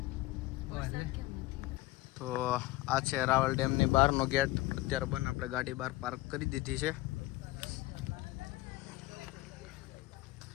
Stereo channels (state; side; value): quieter; right; 18.6 dB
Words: તો આ છે રાવલ ડેમની બહારનો ગેટ. અત્યારે બંધ. આપણે ગાડી બહાર પાર્ક કરી દીધી છે.